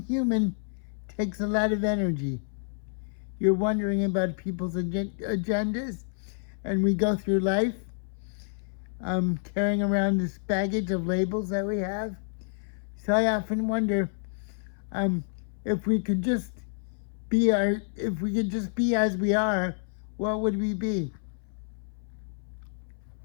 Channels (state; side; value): silent; right; 59 dB below the other